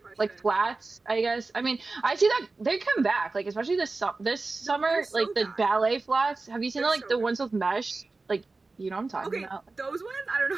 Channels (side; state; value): left; quieter; 3.6 dB